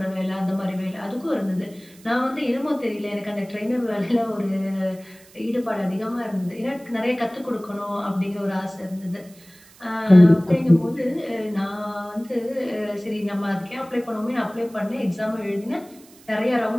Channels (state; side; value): noise; right; hiss, 25 dB below the sound